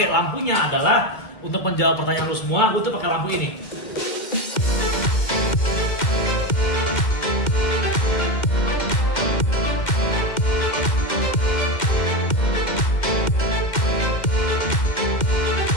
lampunya adalah untuk menjawab pertanyaan lu semua, gue tuh pakai lampu ini.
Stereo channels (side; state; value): right; late; 2.1 ms